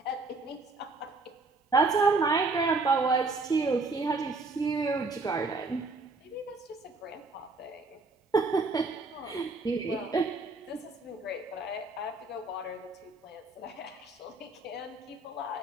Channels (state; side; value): quieter; left; 3.4 dB